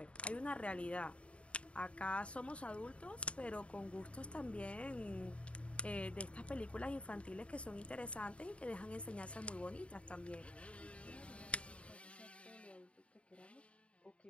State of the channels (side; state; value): right; late; 0.061 ms